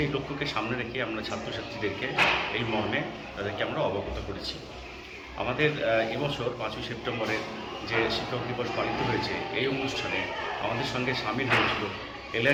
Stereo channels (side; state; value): both; identical; correlation 1.00